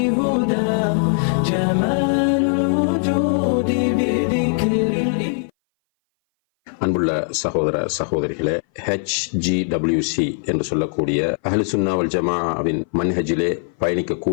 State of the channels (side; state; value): right; silent; 59 dB below the other